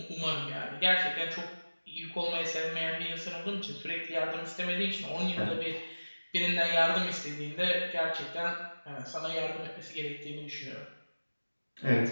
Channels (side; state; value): both; inverted; correlation -1.00